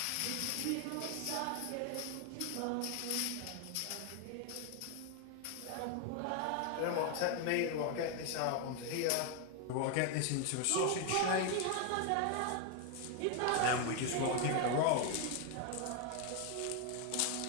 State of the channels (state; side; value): different; both; correlation 0.01